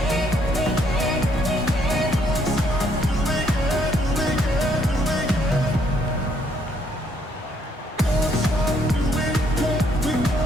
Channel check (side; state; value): both; normal; correlation 0.69